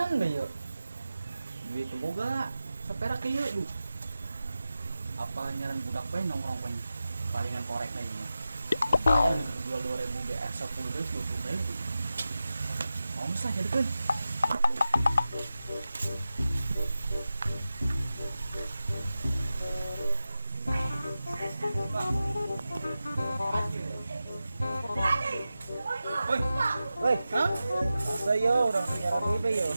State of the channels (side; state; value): both; inverted; correlation -0.93